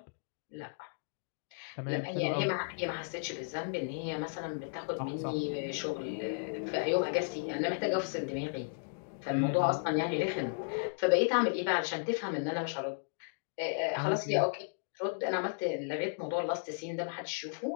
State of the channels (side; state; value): right; silent; digital silence